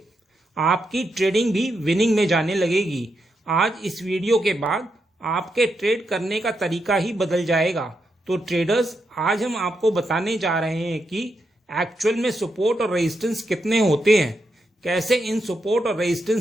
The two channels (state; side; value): normal; both; correlation 0.83